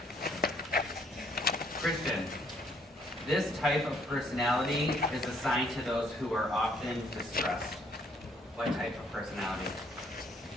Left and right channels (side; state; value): both; normal; correlation 0.66